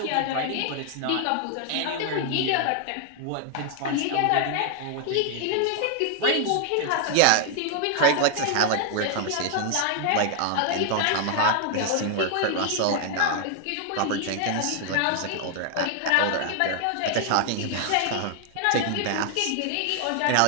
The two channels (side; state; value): both; different; correlation 0.00